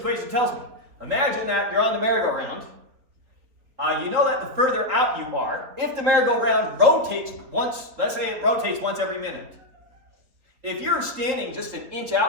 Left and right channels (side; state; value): left; late; 4.1 ms